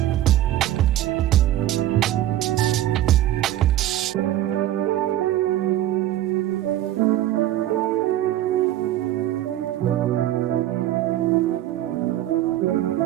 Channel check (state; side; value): quieter; left; 13.3 dB